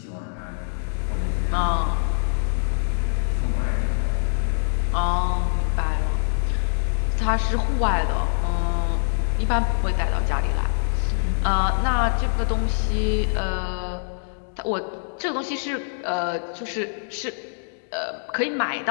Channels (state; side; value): silent; right; digital silence